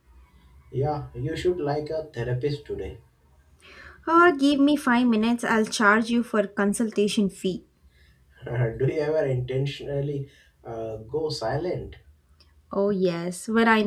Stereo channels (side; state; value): both; identical; correlation 1.00